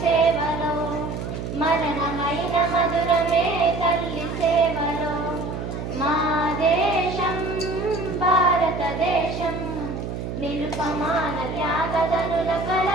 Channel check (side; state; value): right; noise; hum, 6 dB below the sound